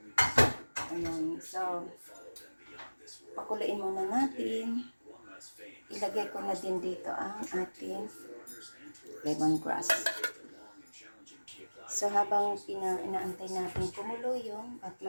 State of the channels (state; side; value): inverted; both; correlation -1.00